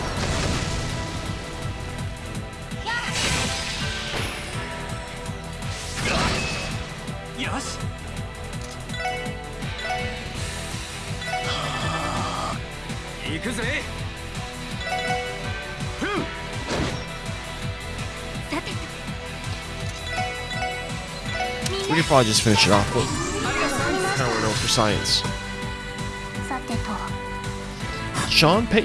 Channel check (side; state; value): both; identical; correlation 1.00